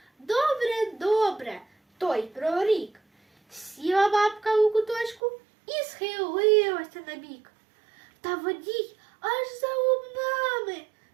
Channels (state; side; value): drops out; left; at 5.2 s